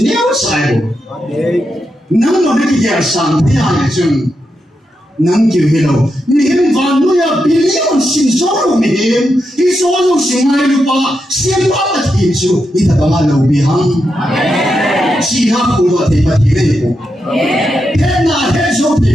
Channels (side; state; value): both; normal; correlation 0.85